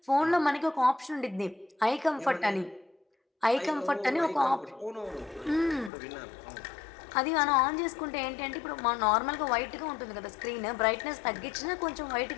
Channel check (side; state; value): right; drops out; at 5.9 s